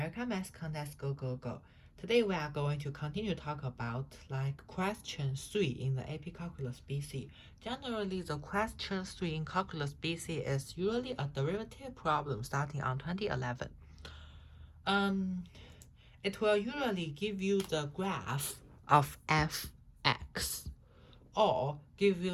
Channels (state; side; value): identical; both; correlation 1.00